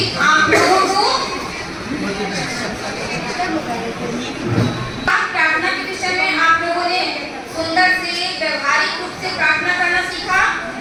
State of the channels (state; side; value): identical; both; correlation 1.00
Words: आप लोगों को प्रार्थना के विषय में आप लोगों ने सुंदर से व्यवहारिक रूप से प्रार्थना करना सीखा।